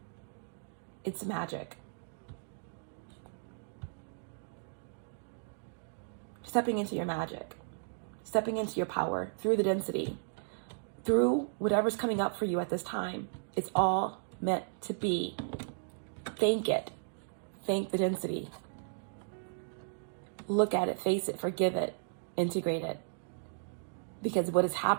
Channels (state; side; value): silent; left; digital silence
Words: magic. Stepping into your magic, stepping into your power through the density, through whatever's coming up for you at this time. It's all meant to be. Thank it. Thank the density. Look at it, face it, forgive it, integrate it. Because what is